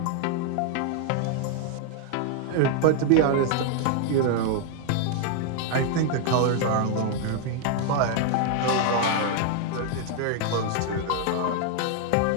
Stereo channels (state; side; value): different; both; correlation 0.00